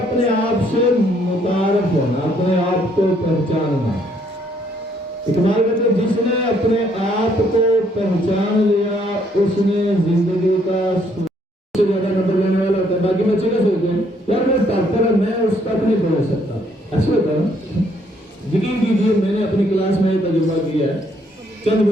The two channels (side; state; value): both; normal; correlation 0.68